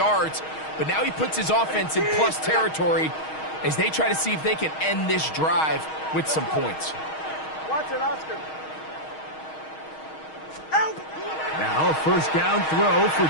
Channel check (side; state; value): right; late; 6.4 ms